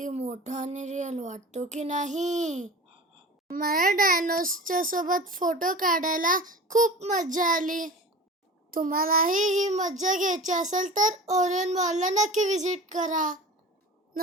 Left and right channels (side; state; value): both; normal; correlation 0.37